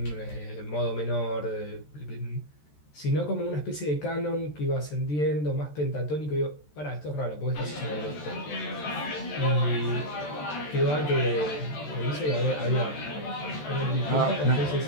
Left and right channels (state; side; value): late; right; 13 ms